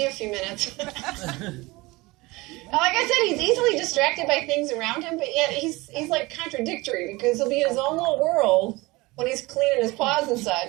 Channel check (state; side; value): quieter; left; 22.2 dB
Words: a few minutes. Like I said, he's easily distracted by things around him, but yet he's like contradictory because he'll be in his own little world when he's cleaning his paws and